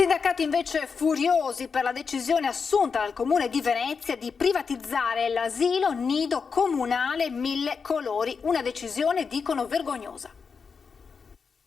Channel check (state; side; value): quieter; right; 5.5 dB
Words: invece furiosi per la decisione assunta dal Comune di Venezia di privatizzare l'asilo nido comunale Mille Colori, una decisione, dicono, vergognosa.